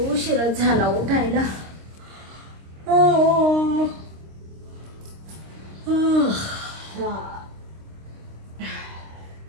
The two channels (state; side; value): late; left; 26 ms